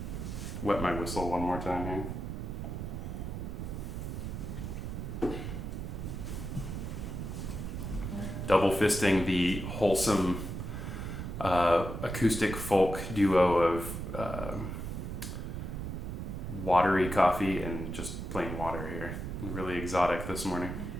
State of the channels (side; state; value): right; noise; rumble, 5 dB below the sound